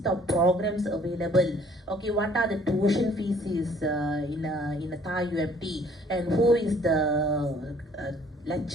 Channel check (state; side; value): normal; both; correlation 0.58